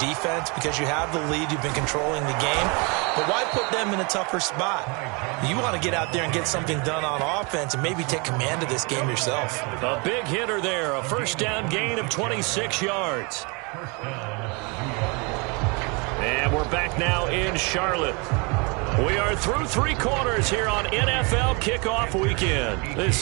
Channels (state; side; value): quieter; left; 30.8 dB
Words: because you have the lead, you've been controlling the game. But why put them in a tougher spot? You want to get out there and get something done on offense and maybe take command of this game yourself. A big hitter there, a first down gain of 26 yards. And we're back now in Charlotte. We are through 3 quarters here on NFL Kickoff Weekend.